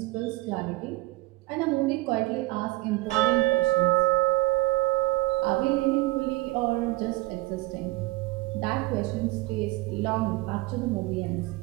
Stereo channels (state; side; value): quieter; left; 20.2 dB